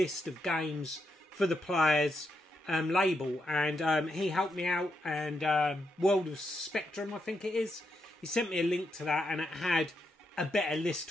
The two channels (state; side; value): normal; both; correlation 0.82